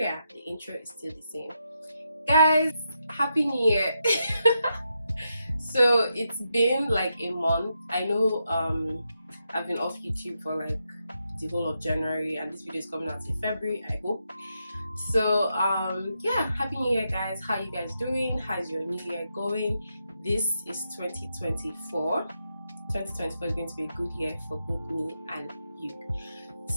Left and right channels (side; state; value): both; inverted; correlation -0.84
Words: The intro is still the same. Guys, Happy New Year! So it's been like a month. I know I've been off YouTube for like the whole of January and this video is coming out in February, I hope. So yeah, Happy New Year guys. How you guys doing? How's your new year going? This is 2024. 2024 is going to be a good year for both me and you.